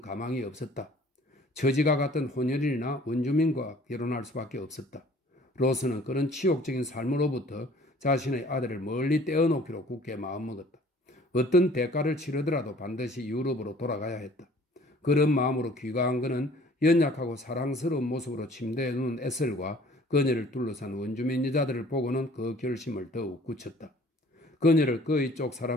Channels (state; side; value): normal; both; correlation 0.53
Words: 가망이 없었다. 처지가 같은 혼혈인이나 원주민과 결혼할 수밖에 없었다. 로스는 그런 치욕적인 삶으로부터 자신의 아들을 멀리 떼어놓기로 굳게 마음먹었다. 어떤 대가를 치르더라도 반드시 유럽으로 돌아가야 했다. 그런 마음으로 귀가한 그는 연약하고 사랑스러운 모습으로 침대에 누운 에셀과 그녀를 둘러싼 원주민 여자들을 보고는 그 결심을 더욱 굳혔다. 그녀를 그의 쪽